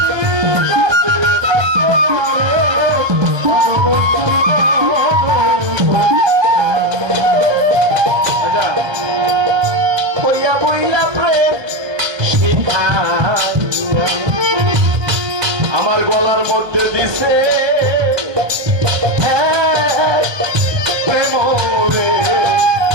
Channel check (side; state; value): left; late; 1.3 ms